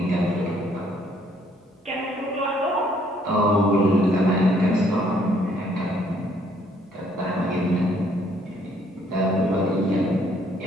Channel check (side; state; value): both; normal; correlation 0.66